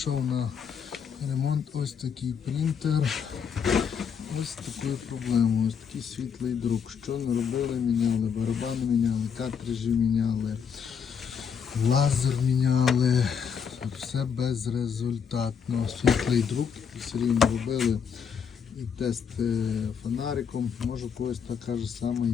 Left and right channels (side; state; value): right; quieter; 7.0 dB